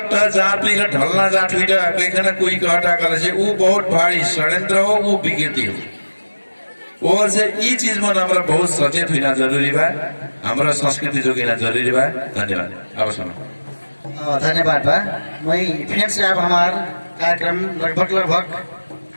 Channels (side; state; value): both; inverted; correlation -1.00